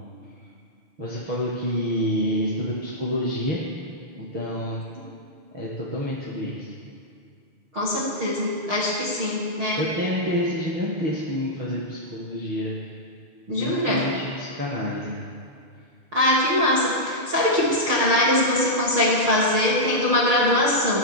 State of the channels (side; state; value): left; late; 6.4 ms